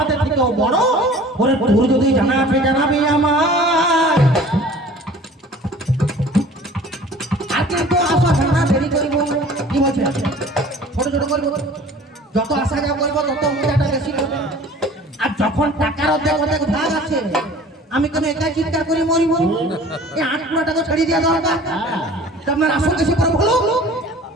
থেকেও বড়? ওরে তোর যদি জানা আছে জানাবে আমার। আজকে তো আসা জানা দেরি করিব কি করবো, যত আসা যাওয়া করবো তত মজাটা বেশি করবো। আর যখন টাকার অর্ধেক অর্ধেক ভাগ আছে, আমি কেন একাই চিৎকার করে মরিব? এই 8 টাকা ছাড়িয়ে দেওয়া দরকার। তা আপনার আসল কিছু করে বলো।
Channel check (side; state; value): both; normal; correlation 0.46